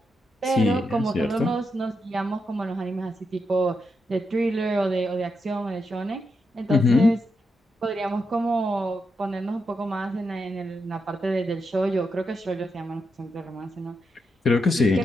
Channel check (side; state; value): both; normal; correlation 0.84